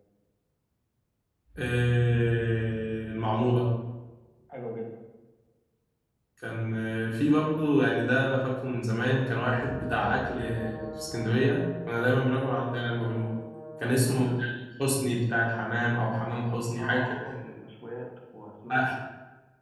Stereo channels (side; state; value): both; identical; correlation 1.00